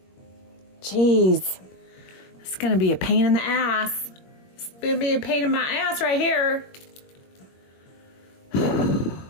Jeez. It's going to be a pain in the ass. It's going to be a pain in my ass right here.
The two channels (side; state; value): right; late; 21 ms